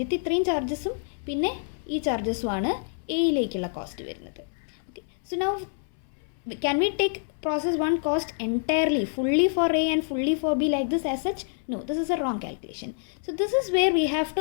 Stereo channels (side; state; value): right; silent; 60 dB below the other